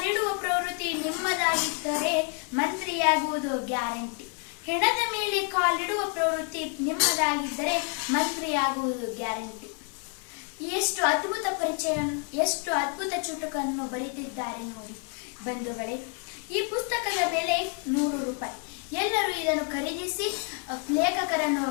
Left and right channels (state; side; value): quieter; right; 38.3 dB